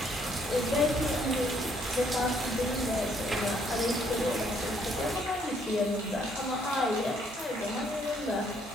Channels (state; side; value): normal; both; correlation 0.67